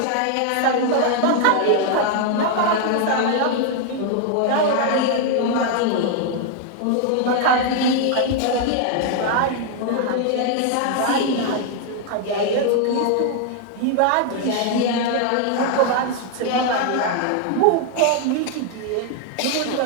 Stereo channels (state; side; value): different; both; correlation 0.00